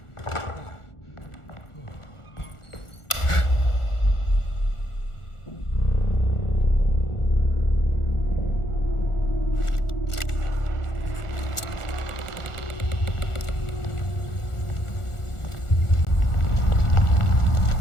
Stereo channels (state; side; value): late; right; 1.4 ms